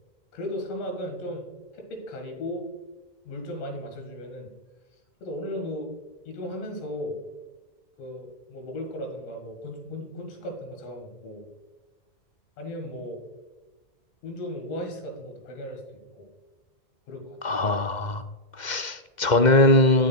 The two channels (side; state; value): right; late; 2.1 ms